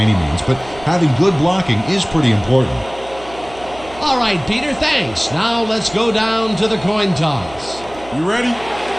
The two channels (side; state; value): right; noise; hum, 19 dB below the sound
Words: means, but having good blocking is pretty important. All right, Peter, thanks. Now let's go down to the coin toss. You ready?